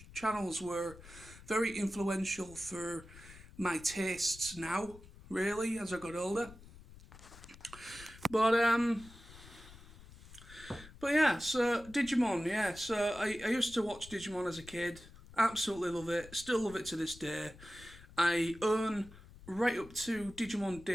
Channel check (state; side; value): noise; left; rumble, 19 dB below the sound